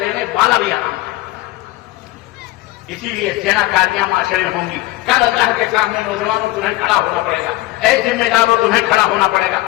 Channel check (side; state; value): right; quieter; 18.2 dB